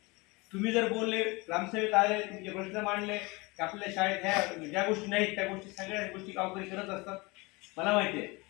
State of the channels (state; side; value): quieter; right; 25.3 dB